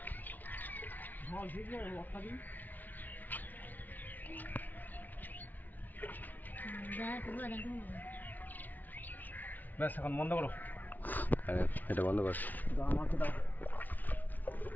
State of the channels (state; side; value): late; right; 0.081 ms